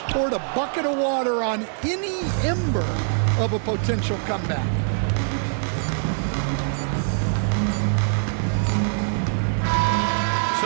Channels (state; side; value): silent; left; digital silence